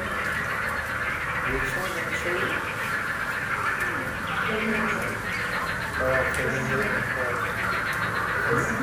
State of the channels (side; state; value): both; identical; correlation 1.00